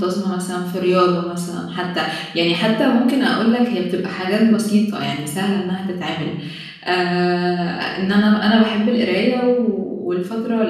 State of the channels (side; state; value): both; identical; correlation 1.00